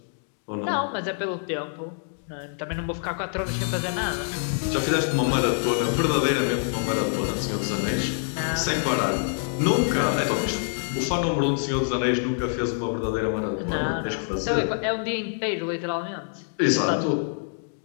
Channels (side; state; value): right; silent; digital silence